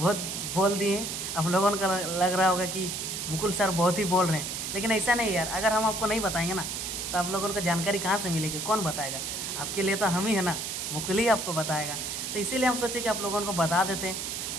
बोल दिए हैं, आप लोगों को लग रहा होगा कि मुकुल सर बहुत ही बोल रहे हैं, लेकिन ऐसा नहीं यार। अगर हम आपको नहीं बताएंगे ना तो आप लोगों को जानकारी कहाँ से मिलेगी, कौन बताएगा? आपके लिए तो हम ही है ना, मुकुल ही आपको बताएगा। तो इसीलिए हम सोचे कि आप लोगों को बता देते हैं,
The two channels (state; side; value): noise; right; hiss, 4 dB below the sound